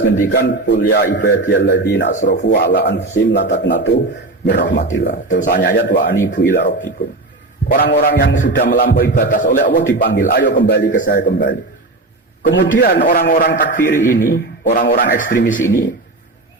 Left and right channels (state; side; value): quieter; left; 3.0 dB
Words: ngendikan qul ya ibadiyalladzina asrafu ala anfusihim la taqnatu mir rahmatillah. Terus ayat wa anibu ila rabbikum. Orang-orang yang sudah melampaui batas oleh Allah dipanggil, ayo kembali ke saya kembali. Kemudian orang-orang takfiri ini, orang-orang ekstremis ini,